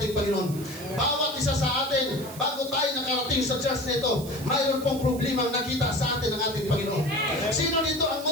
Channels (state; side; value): noise; right; hiss, 15 dB below the sound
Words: Panginoon. Bawat isa sa atin, bago tayo nakarating sa church na ito, mayroon pong problema nakita sa atin ng ating Panginoon. Sino dito ang